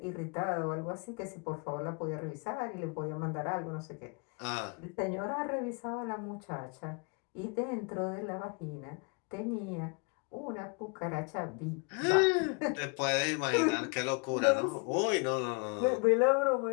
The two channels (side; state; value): right; quieter; 34.0 dB